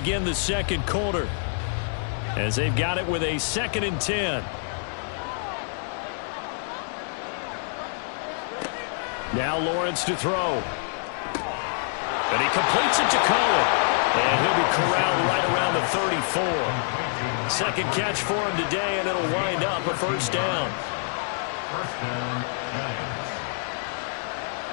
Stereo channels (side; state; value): right; silent; digital silence